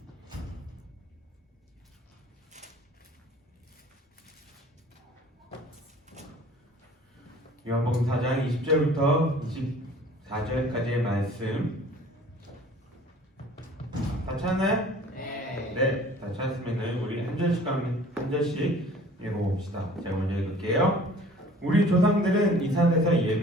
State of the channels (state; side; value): normal; both; correlation 0.49